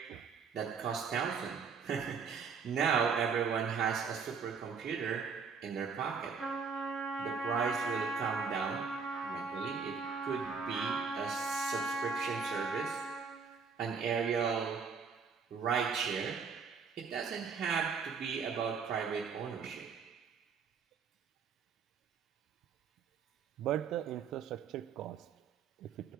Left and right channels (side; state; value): left; quieter; 5.6 dB